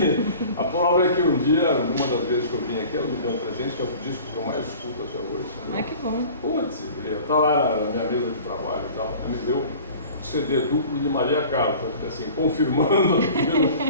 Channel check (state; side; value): inverted; both; correlation -0.44